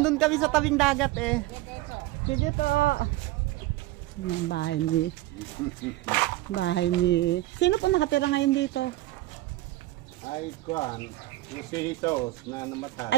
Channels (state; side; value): quieter; left; 17.4 dB